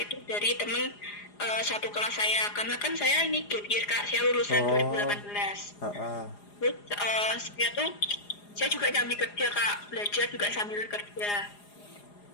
itu dari temen satu kelas saya, karena kan saya ini gap year Kak, saya lulusan Oh, 2018. ah, ah. Terus saya juga sambil kerja Kak, belajar juga sambil kerja.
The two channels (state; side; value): late; right; 4.9 ms